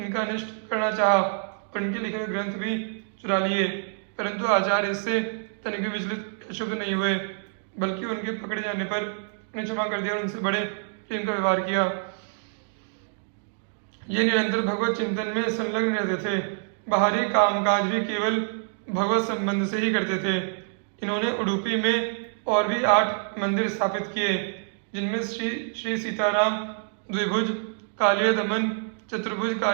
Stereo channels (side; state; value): left; silent; digital silence